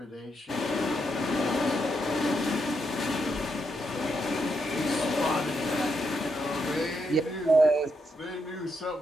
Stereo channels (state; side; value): normal; both; correlation 0.81